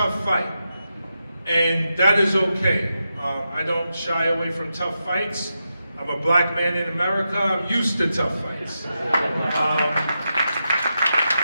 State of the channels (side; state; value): both; inverted; correlation -0.87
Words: fight, and that is okay. I don't shy away from tough fights. I'm a black man in America. I'm used to tough fights.